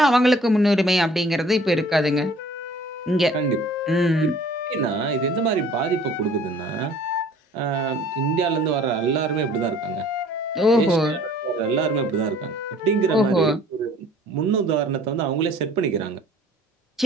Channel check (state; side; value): normal; both; correlation 0.52